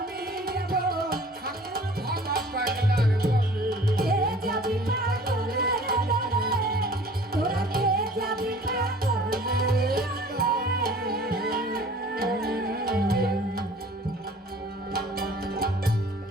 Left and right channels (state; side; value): normal; both; correlation 0.49